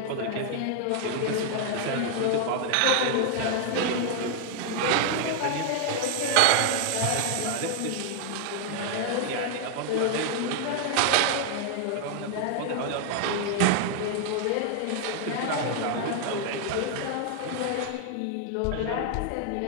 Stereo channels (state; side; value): different; both; correlation 0.00